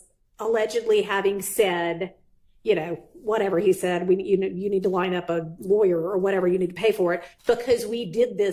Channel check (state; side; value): identical; both; correlation 1.00